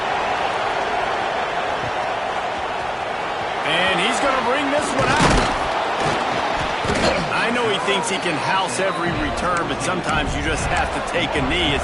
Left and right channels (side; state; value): both; identical; correlation 1.00